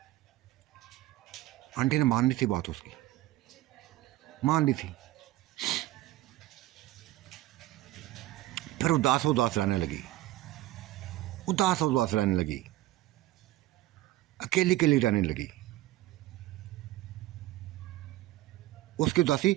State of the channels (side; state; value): left; quieter; 16.0 dB